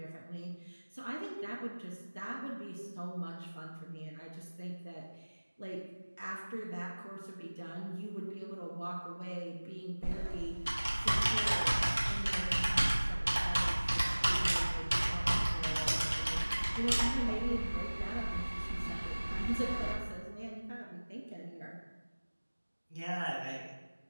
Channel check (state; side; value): inverted; both; correlation -1.00